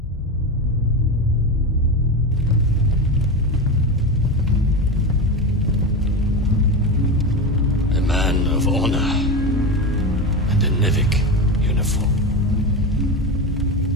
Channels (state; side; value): normal; both; correlation 0.20